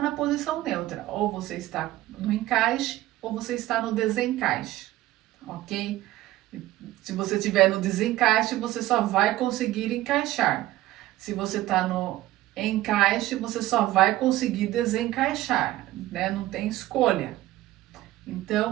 posição neutra. Ou você está no encaixe, ou você está no desencaixe, ok? Se você estiver no desencaixe, você só vai conseguir encaixar. Se você está no encaixe, você só vai conseguir desencaixar, né? Não tem escolha.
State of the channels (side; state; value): left; quieter; 16.0 dB